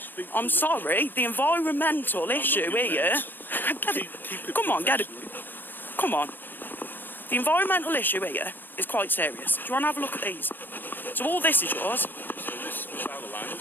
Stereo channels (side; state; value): right; late; 0.092 ms